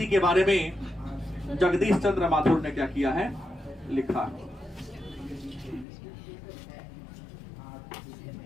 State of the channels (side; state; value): right; drops out; at 5.9 s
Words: के बारे में जगदीश चंद्र माथुर ने क्या किया है? लिखा।